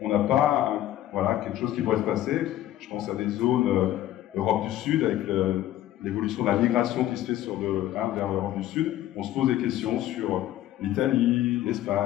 on n'a pas voilà, quelque chose qui pourrait se passer. Je pense à des zones Europe du Sud, avec l'évolution de la migration qui se fait vers l'Europe du Sud. On se pose des questions sur l'Italie,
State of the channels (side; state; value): right; quieter; 13.3 dB